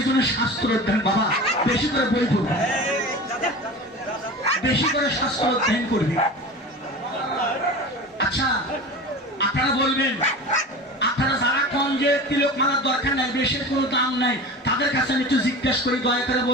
জন্য শাস্ত্র অধ্যয়ন বাবা, বেশি করে বই পড়বে, বেশি করে শাস্ত্র অধ্যয়ন করবে। আচ্ছা আপনারা বলবেন, আপনারা যারা কন যে তিলক মালার দরকার নাই, বেশের কোনো দাম নাই, তাদের কাছে আমি একটু জিজ্ঞেস করি, দয়া করে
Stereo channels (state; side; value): normal; both; correlation 0.33